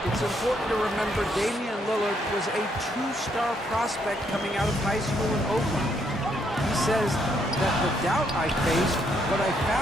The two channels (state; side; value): normal; both; correlation 0.73